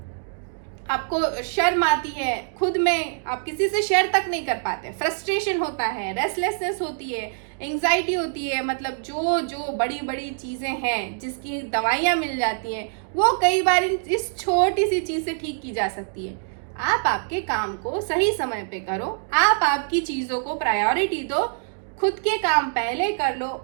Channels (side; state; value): left; silent; digital silence